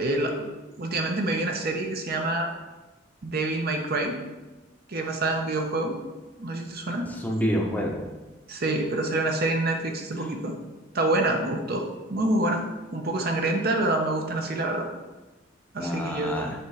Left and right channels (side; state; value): both; normal; correlation 0.40